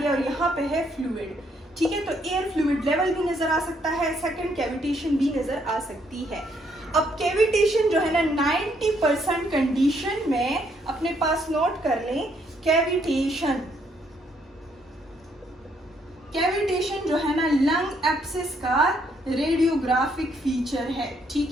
और यहाँ पे है फ्लूइड, ठीक है, तो एयर फ्लूइड लेवल भी नजर आ सकता है, सेकंड कैविटेशन भी नजर आ सकती है। अब कैविटेशन जो है ना 90% कंडीशन में अपने पास नोट कर लें, कैविटेशन जो है ना लंग एब्सेस का रेडियोग्राफिक फीचर है,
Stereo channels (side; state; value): both; normal; correlation 0.71